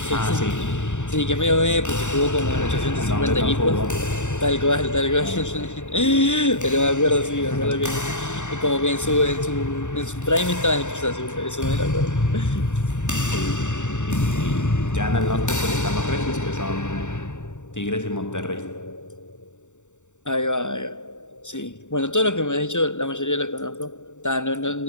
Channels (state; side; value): late; right; 0.84 ms